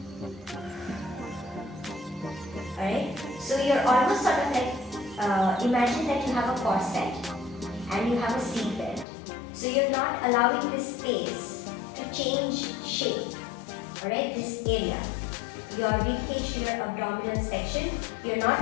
Alright, so you're almost sort of like, imagine that you have a corset and you have a seat belt. So you're not allowing this space to change shape. Alright, this area. Your rib cage to your abdominal section, you're not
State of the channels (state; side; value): drops out; right; at 9.1 s